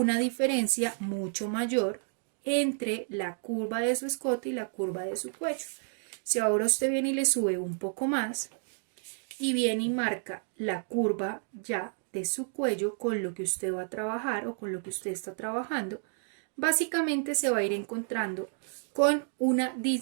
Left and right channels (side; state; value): left; silent; 57 dB below the other